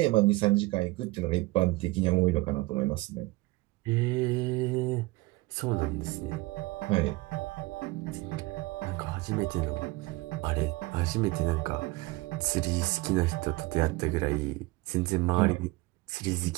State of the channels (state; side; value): quieter; left; 21.7 dB